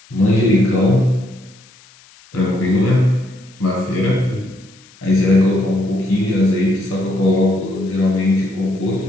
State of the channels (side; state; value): left; noise; hiss, 27 dB below the sound